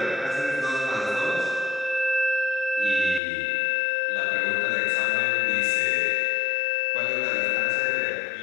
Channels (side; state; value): right; drops out; at 3.2 s